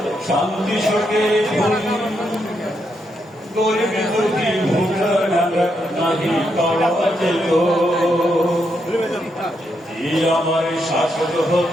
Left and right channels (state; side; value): normal; both; correlation 0.80